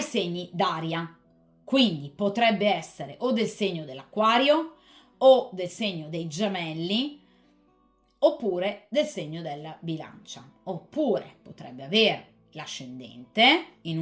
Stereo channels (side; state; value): both; identical; correlation 1.00